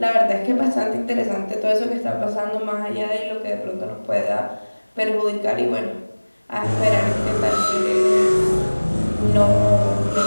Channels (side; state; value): both; inverted; correlation -1.00